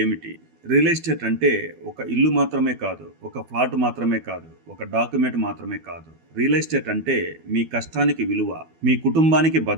ఏమిటి? Real estate అంటే ఒక ఇల్లు మాత్రమే కాదు, ఒక ఫ్లాట్ మాత్రమే కాదు, ఒక డాక్యుమెంట్ మాత్రమే కాదు. రియల్ ఎస్టేట్ అంటే మీ కష్టానికి విలువ, మీ కుటుంబానికి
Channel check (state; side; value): late; left; 12 ms